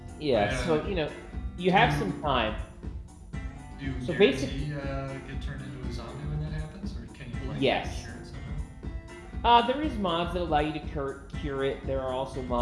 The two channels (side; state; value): both; identical; correlation 1.00